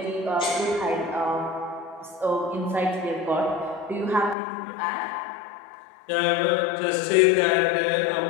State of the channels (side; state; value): right; drops out; at 4.4 s